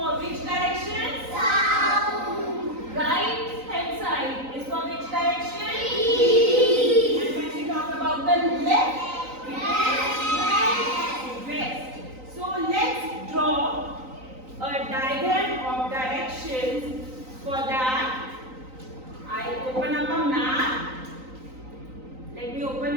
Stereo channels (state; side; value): late; left; 3.9 ms